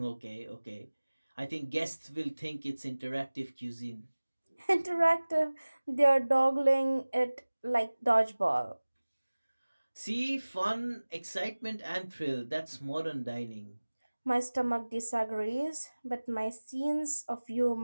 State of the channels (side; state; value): both; inverted; correlation -1.00